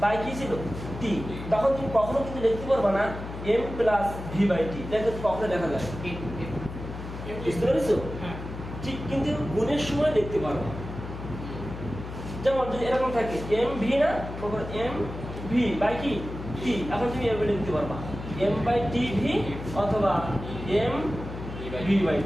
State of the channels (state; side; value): noise; left; hum, 9 dB below the sound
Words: বাই কি ছিল টি, তখন তুমি কখনো কিন্তু লিখতে পারবে না M plus V by T, দেখো কখনো দেখা যায়। বুঝতে পেরেছো? ঠিক, কিন্তু গুণের সময় লিখতে পারবো। যেমন যদি এরকম থাকে এম ভি না, এম ভি বাই কি টি, এখন তুমি এভাবে লিখতে পারবা এম বাই টি ভি অথবা এম ভি বাই